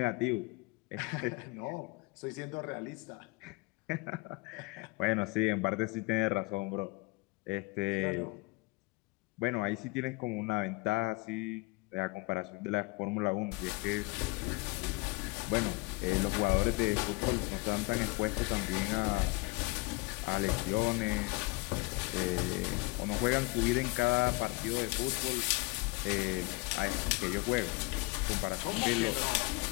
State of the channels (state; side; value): quieter; right; 25.8 dB